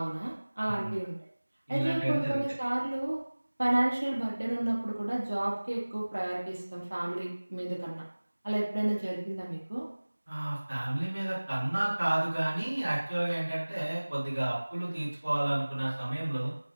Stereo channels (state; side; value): inverted; both; correlation -1.00